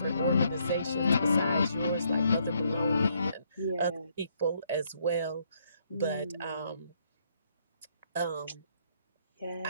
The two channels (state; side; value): inverted; both; correlation -0.71